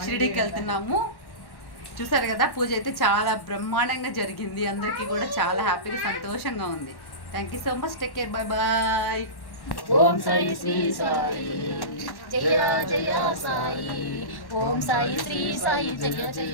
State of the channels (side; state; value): right; late; 1.1 ms